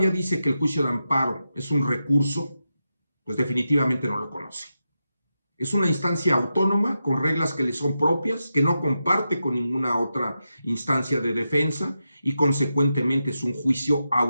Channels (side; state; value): both; inverted; correlation -0.89